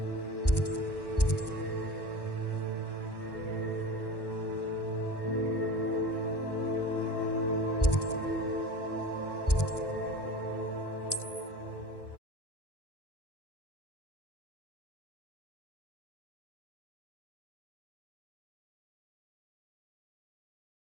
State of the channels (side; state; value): right; late; 1.1 ms